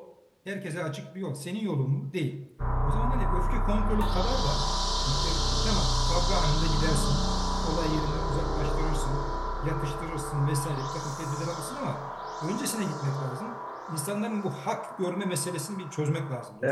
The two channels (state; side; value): identical; both; correlation 1.00